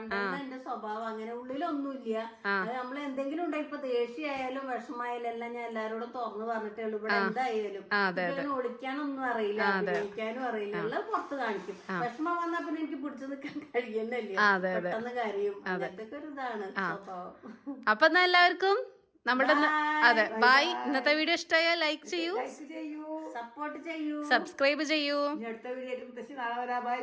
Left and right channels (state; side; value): identical; both; correlation 1.00